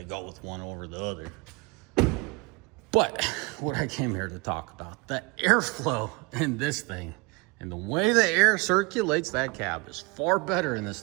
go with one over the other. But what I came here to talk about, the airflow in this thing and the way the air circulates that cab is far better in this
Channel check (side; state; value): left; quieter; 27.6 dB